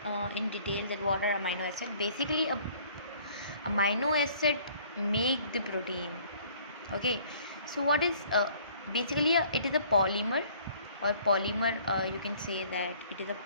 in detail that what are amino acid. Basically, a amino acid make the protein. Okay, so what is basically it is a polymer or polymer. You can say that it is a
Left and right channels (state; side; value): inverted; both; correlation -0.56